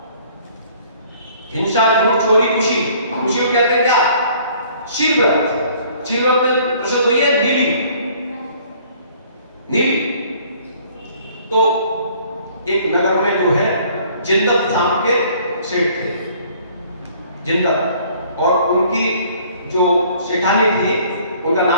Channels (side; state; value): both; inverted; correlation -0.56